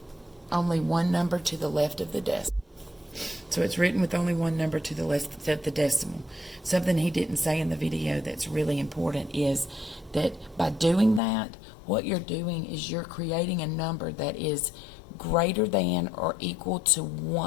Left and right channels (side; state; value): right; drops out; at 11.2 s